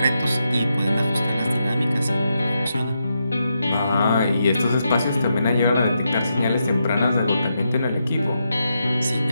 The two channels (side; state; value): both; inverted; correlation -0.84